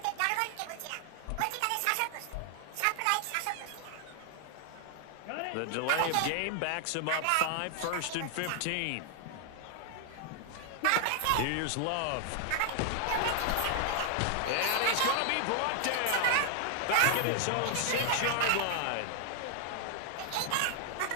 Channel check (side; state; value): both; different; correlation 0.00